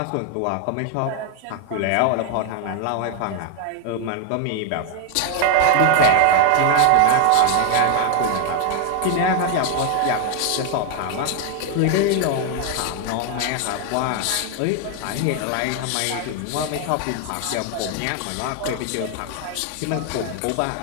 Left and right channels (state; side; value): different; both; correlation 0.00